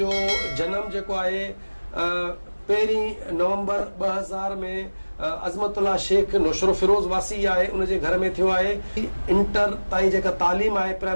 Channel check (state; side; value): inverted; both; correlation -1.00